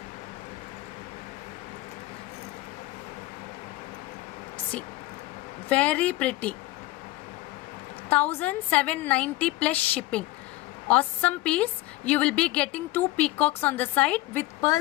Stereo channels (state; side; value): quieter; right; 18.2 dB